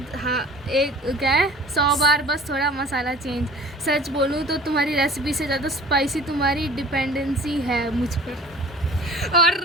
हाँ एक क्या है 100 बार, बस थोड़ा मसाला चेंज। सच बोलूँ तो तुम्हारी रेसिपी से ज़्यादा स्पाइसी तुम्हारी डिपेंडेंसी है मुझ पर, और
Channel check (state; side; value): normal; both; correlation 0.44